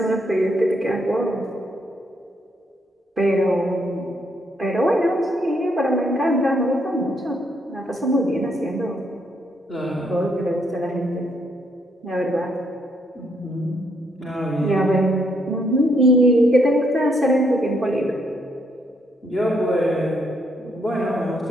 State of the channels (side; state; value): both; normal; correlation 0.74